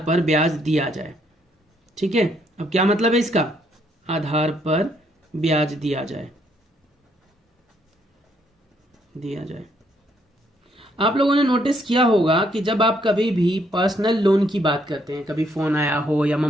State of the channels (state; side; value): normal; both; correlation 0.71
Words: ब्याज दिया जाए, ठीक है। अब क्या मतलब है इसका? आधार पर ब्याज दिया जाए, दिया जाए। आप लोगों ने नोटिस किया होगा कि जब आप कभी भी पर्सनल लोन की बात करते हैं, कभी फोन आया हो या